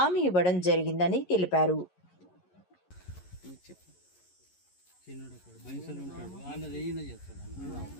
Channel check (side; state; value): right; late; 11 ms